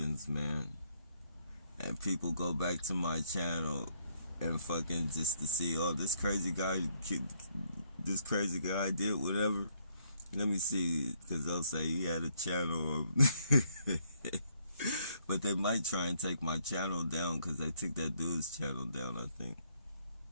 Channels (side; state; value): both; inverted; correlation -0.70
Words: And people go back to my channel and fucking just to see, oh, this crazy guy did whatever. Let me see, because they'll say he had a channel. But they might try and take my channel down because they took that dude's channel down, I think.